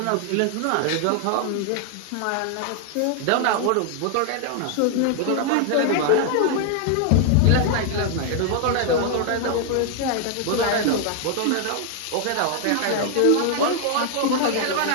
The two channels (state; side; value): different; both; correlation 0.00